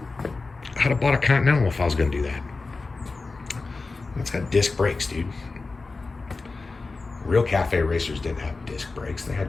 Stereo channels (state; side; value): quieter; right; 3.8 dB